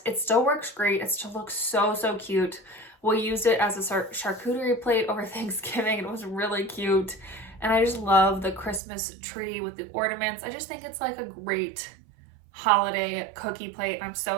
it still works great. It still looks so cute. We used it as a charcuterie plate over Thanksgiving. It was really cute. And I just love the Christmas tree with the ornaments. I just think it's like a great holiday cookie plate. I'm so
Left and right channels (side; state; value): left; drops out; at 8.8 s